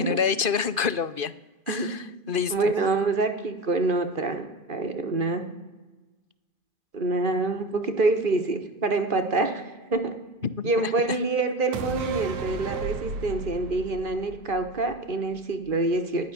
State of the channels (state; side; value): late; left; 2.5 ms